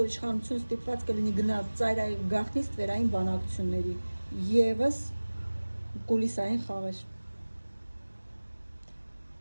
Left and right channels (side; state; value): both; inverted; correlation -1.00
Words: իշխանությունը ստիպված կլինի գնալ ծայրահեղ գաղտնի ստվերային բանակցությունների, եւս կուլիսային խաղեր։